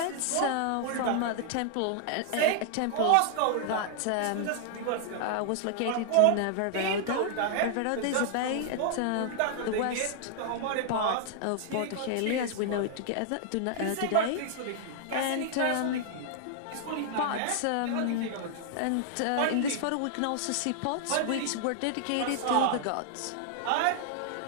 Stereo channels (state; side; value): different; both; correlation -0.01